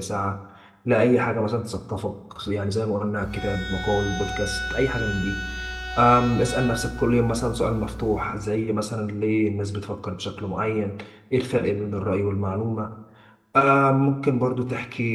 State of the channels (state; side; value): identical; both; correlation 1.00